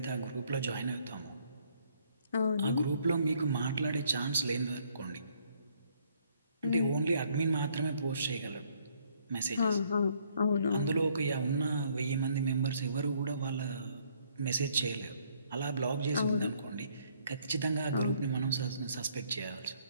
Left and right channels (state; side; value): inverted; both; correlation -0.66